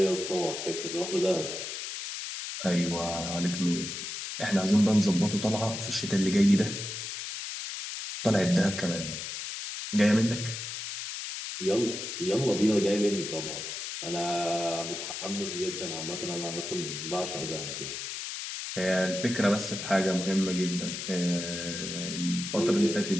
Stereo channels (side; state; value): left; noise; hiss, 6 dB below the sound